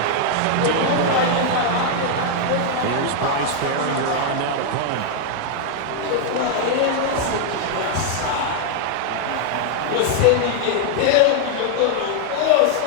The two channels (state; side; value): different; both; correlation 0.00